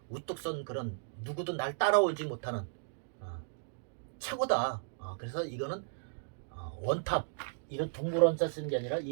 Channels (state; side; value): silent; left; digital silence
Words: 우뚝 선 그런 누구도 날 따라오지 못하는 최고다. 그래서 이거는 원탑 이런 둥글 원자 쓰는 게 아니라